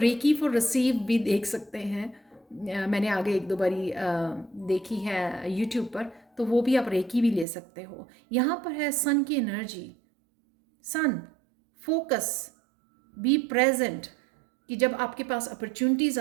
फॉर रिसीव भी देख सकते हैं। मैंने आगे एक दो बारी देखी है यूट्यूब पर, तो वो भी आप रेकी भी ले सकते हो। यहाँ पर है सन की energy, sun, focus, be present, कि जब आपके पास अपॉर्चुनिटीज़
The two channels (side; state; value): left; drops out; at 7.5 s